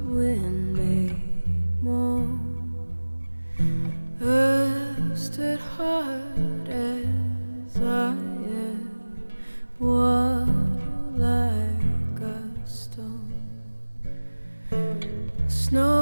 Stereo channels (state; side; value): inverted; both; correlation -1.00